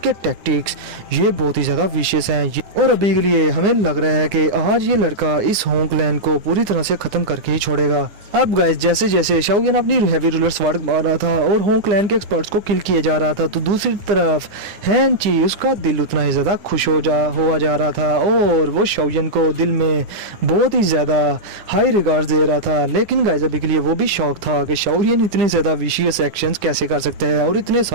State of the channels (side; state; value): left; late; 9.8 ms